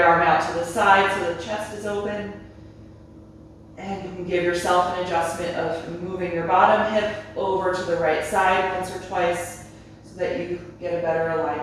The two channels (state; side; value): identical; both; correlation 1.00